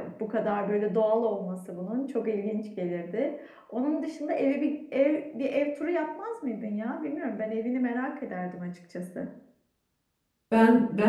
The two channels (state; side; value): identical; both; correlation 1.00